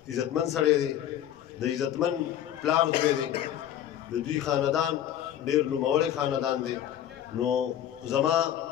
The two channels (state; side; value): quieter; right; 11.1 dB